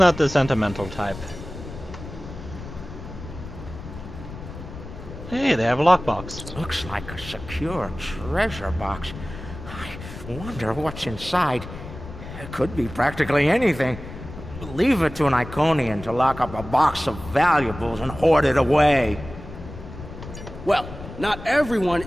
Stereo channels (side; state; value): left; noise; rumble, 12 dB below the sound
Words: the sentimental type. Hey, they have a lockbox. Looks like a secure treasure box. I wonder what's inside. It could be practically anything. Leave it to an Iconian to lock up a box of valuables and hoard it away. Well, not everyone